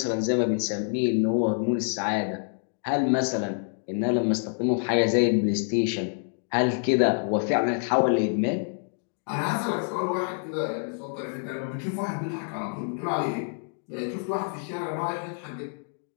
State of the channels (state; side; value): silent; right; 60 dB below the other